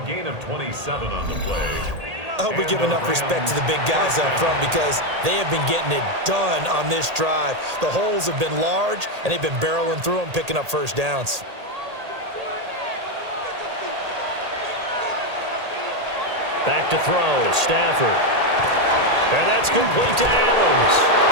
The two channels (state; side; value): late; left; 1.8 ms